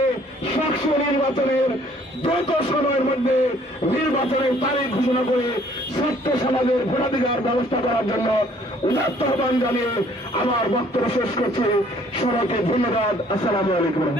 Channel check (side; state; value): both; normal; correlation 0.59